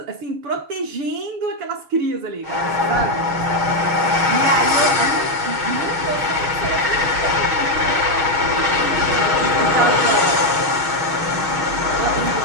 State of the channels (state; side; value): late; left; 6.4 ms